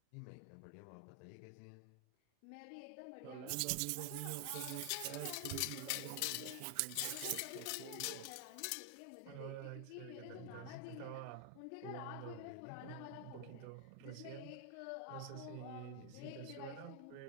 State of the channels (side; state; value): both; different; correlation 0.00